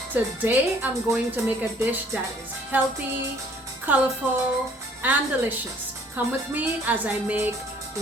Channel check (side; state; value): both; normal; correlation 0.58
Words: Today I'm going to make a dish that is healthy, colorful, and delicious. Come with me as I make